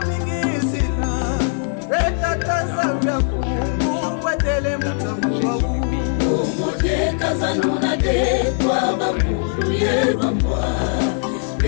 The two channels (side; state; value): right; silent; 58 dB below the other